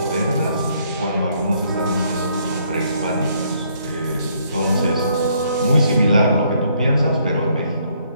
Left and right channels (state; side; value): inverted; both; correlation -0.68